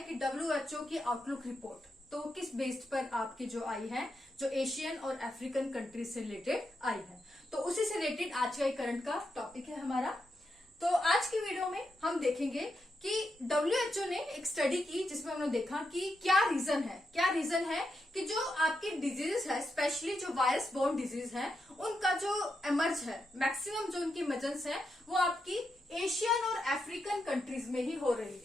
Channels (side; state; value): both; normal; correlation 0.84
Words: कि WHO की आउटलुक रिपोर्ट तो किस बेस्ड पर आपकी जो आई है, जो एशियन और अफ्रीकन कंट्रीज से रिलेटेड आई है। तो उसी से रिलेटेड आज का करंट का टॉपिक है हमारा। तो आज की वीडियो में हम देखेंगे कि WHO ने एक स्टडी की जिसमें हमने देखा कि क्या रीजन है कि जो आपकी डिजीज है, स्पेशली जो वायरस बोर्न डिजीज है, उनका जो एमर्ज है, मैक्सिमम जो उनकी इमर्जेंस है वो आपकी एशियन और अफ्रीकन कंट्रीज में ही हो रही